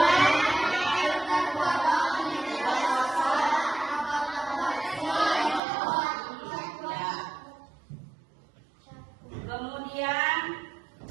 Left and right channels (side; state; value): left; drops out; at 5.6 s